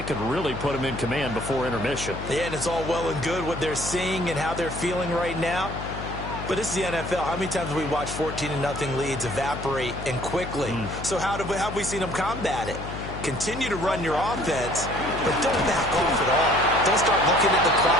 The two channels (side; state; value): left; noise; hum, 8 dB below the sound